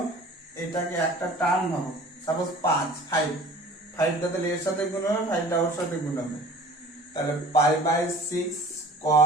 এটাকে একটা টার্ম ভাবো, সাপোজ 5 টা তাহলে এর সাথে গুণ হবে, 5 টা ওর সাথে গুণ হবে, তাহলে pi by 6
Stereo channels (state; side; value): normal; both; correlation 0.46